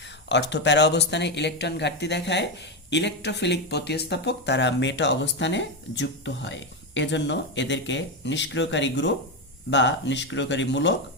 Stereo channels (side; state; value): both; normal; correlation 0.10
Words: অর্থ প্যারা অবস্থানে ইলেকট্রন ঘাটতি দেখায় ইলেকট্রোফিলিক প্রতিস্থাপক তারা মেটা অবস্থানে যুক্ত হয়। এজন্য এদেরকে নিষ্ক্রিয়কারী গ্রুপ বা নিষ্ক্রিয়কারী মূলক